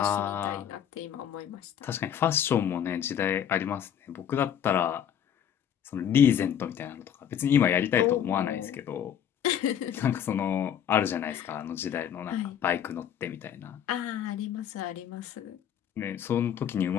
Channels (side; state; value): right; quieter; 9.2 dB